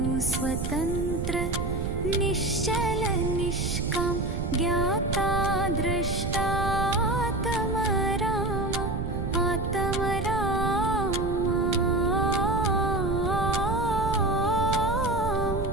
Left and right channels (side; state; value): right; noise; rumble, 3 dB below the sound